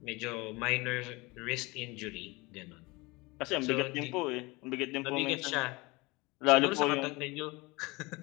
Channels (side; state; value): right; quieter; 24.2 dB